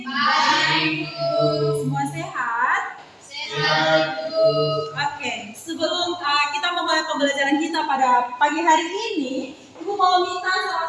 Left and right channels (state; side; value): identical; both; correlation 1.00